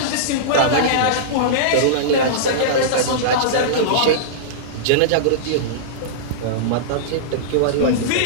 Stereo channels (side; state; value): both; different; correlation -0.03